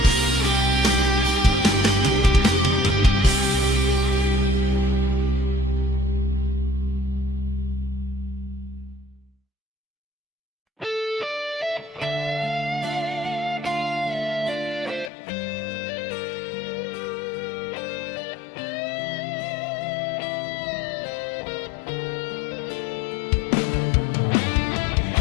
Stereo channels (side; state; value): right; drops out; at 15.1 s